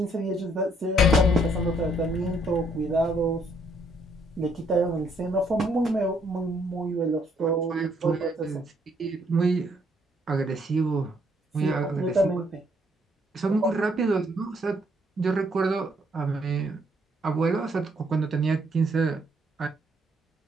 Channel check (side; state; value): both; normal; correlation 0.69